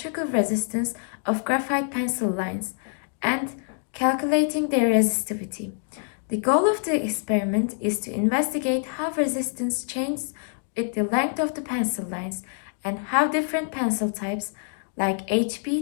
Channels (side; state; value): right; silent; 61 dB below the other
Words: resistance of graphite pencil lines and calculating their resistivity. The goal of the experiment is to investigate how resistance changes with the length of the pencil lines and how different pencil types like